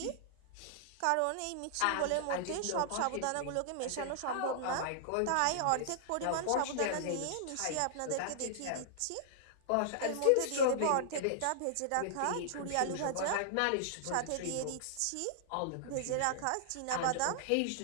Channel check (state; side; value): different; both; correlation -0.01